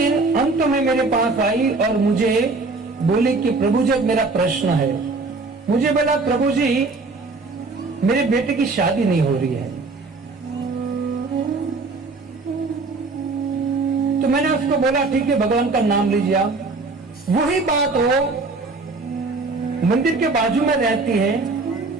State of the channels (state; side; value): quieter; left; 3.7 dB